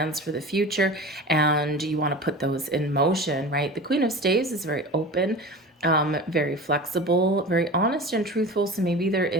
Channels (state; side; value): normal; both; correlation 0.33